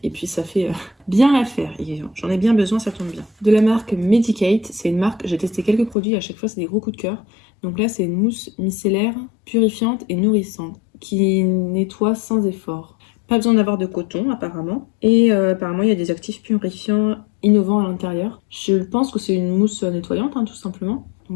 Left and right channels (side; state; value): right; drops out; at 6.0 s